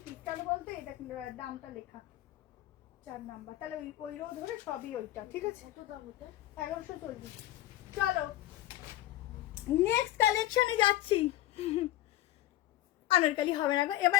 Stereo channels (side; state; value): right; quieter; 14.5 dB